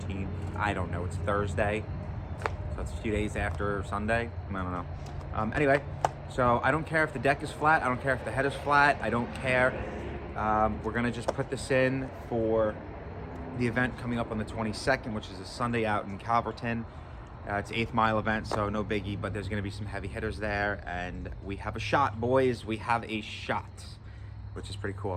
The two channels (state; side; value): identical; both; correlation 1.00